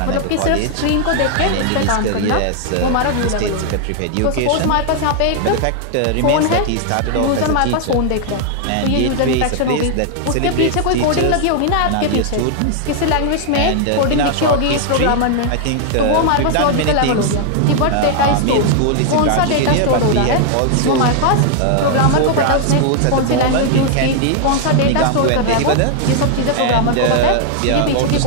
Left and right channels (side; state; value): both; different; correlation 0.00